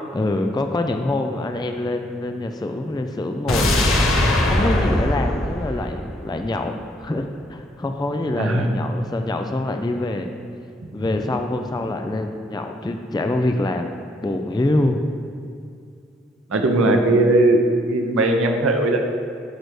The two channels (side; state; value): both; normal; correlation 0.67